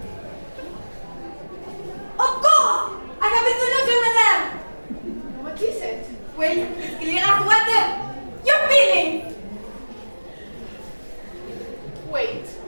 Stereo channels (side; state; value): both; inverted; correlation -1.00